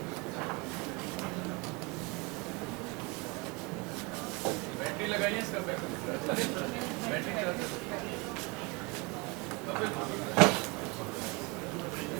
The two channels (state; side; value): quieter; left; 27.4 dB